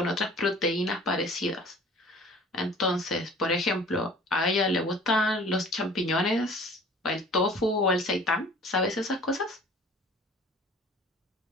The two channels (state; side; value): normal; both; correlation 0.47